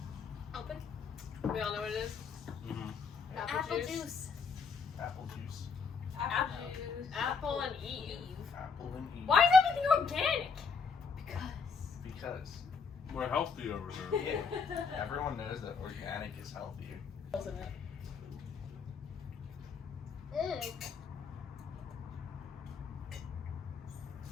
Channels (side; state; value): right; quieter; 5.3 dB